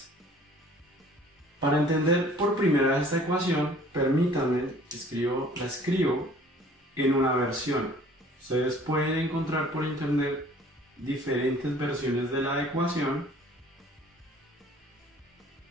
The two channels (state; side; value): normal; both; correlation 0.52